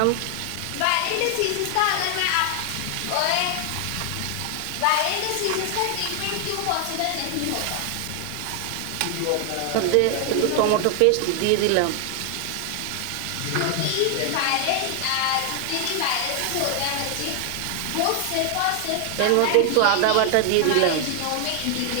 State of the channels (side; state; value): both; different; correlation 0.00